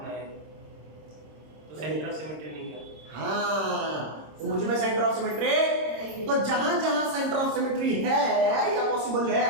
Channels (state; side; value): late; left; 26 ms